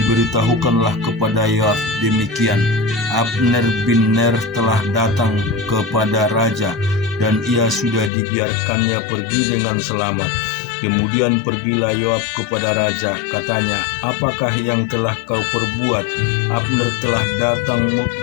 kepada Yoab demikian, Abner bin Ner telah datang kepada raja, dan ia sudah dibiarkannya pergi dengan selamat. Kemudian pergilah Yoab kepada raja, katanya, "Apakah yang telah kau perbuat? Abner telah datang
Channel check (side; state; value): right; drops out; at 8.1 s